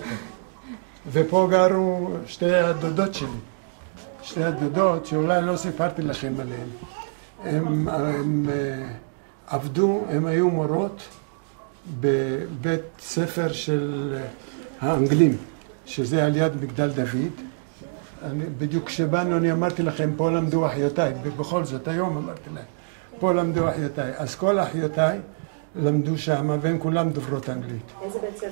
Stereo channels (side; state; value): left; silent; digital silence